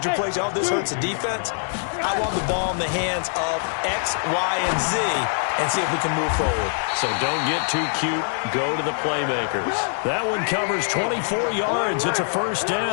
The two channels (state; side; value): silent; right; digital silence